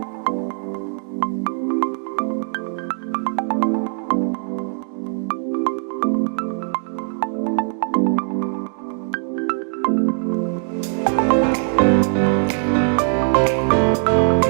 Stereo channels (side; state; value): left; silent; 57 dB below the other